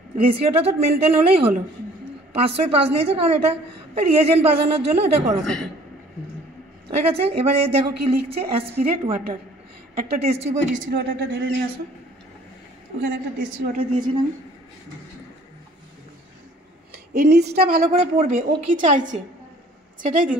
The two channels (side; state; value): both; normal; correlation 0.54